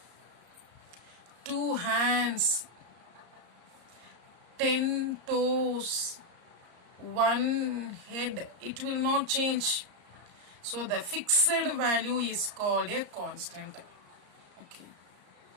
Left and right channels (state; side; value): late; left; 34 ms